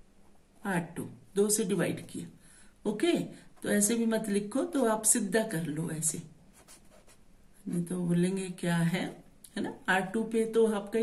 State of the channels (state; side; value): identical; both; correlation 1.00